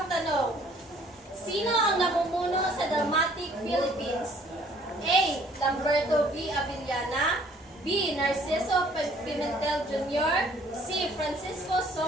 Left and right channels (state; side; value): normal; both; correlation 0.58